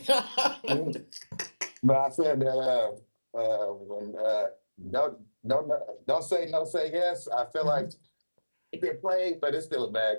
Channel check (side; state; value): both; inverted; correlation -1.00